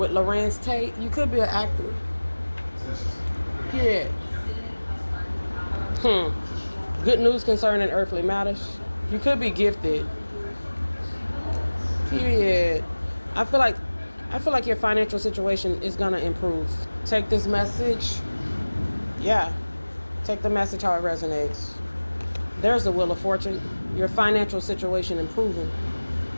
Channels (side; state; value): both; inverted; correlation -1.00